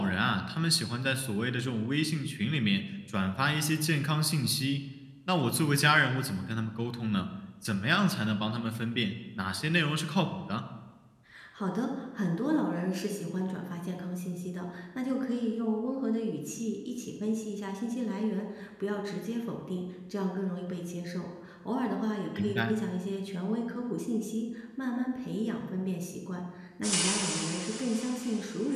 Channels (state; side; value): identical; both; correlation 1.00